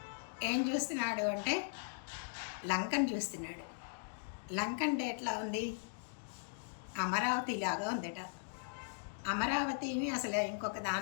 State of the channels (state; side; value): silent; right; digital silence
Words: ఏం చూస్తున్నాడు అంటే లంకను చూస్తున్నాడు. లంక అంటే ఎట్లా ఉంది? అమరావతి లాగా ఉందట. అమరావతిని అసలు ఇంకొక